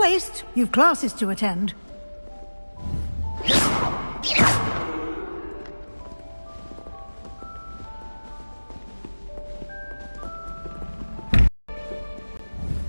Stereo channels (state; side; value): inverted; both; correlation -1.00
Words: You've classes to attend.